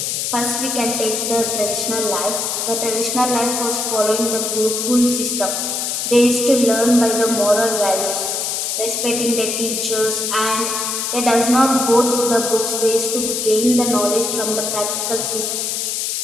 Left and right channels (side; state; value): left; noise; hiss, 1 dB below the sound